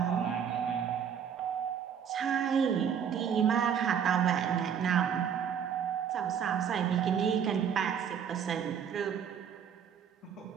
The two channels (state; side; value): quieter; left; 8.0 dB